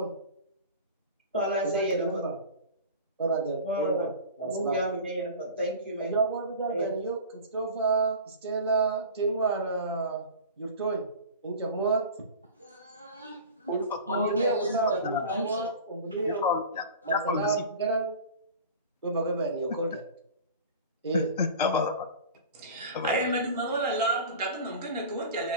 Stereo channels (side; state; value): both; inverted; correlation -0.35